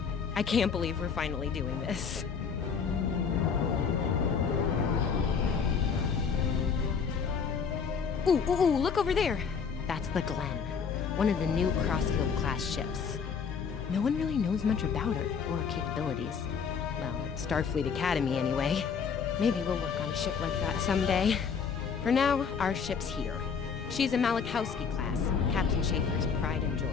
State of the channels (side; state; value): right; quieter; 6.2 dB